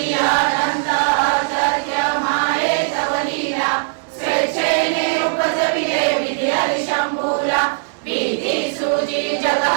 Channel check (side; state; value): left; silent; digital silence